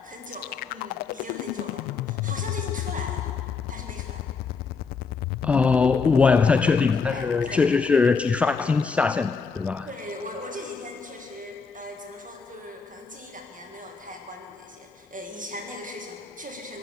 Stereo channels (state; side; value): quieter; right; 5.0 dB